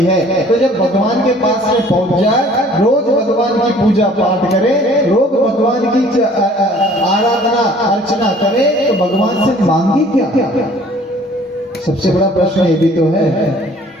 है। तो जब भगवान के पास में पहुंच जाए, रोज भगवान की पूजा पाठ करे, रोज भगवान की आराधना अर्चना करे, तो भगवान से मांगी क्या? सबसे बड़ा प्रश्न ये भी तो है,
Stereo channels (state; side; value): normal; both; correlation 0.54